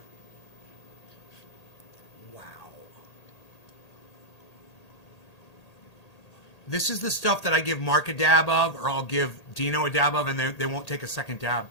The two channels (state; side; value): late; right; 1.8 ms